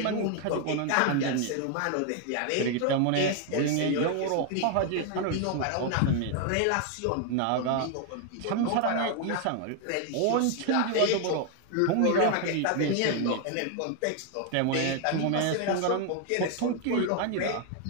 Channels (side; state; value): both; different; correlation 0.00